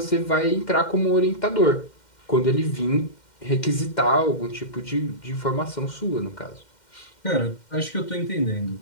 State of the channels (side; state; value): right; late; 2.1 ms